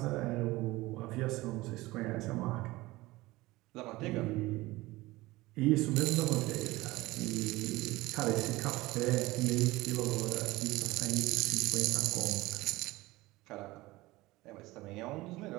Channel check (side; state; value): left; quieter; 19.7 dB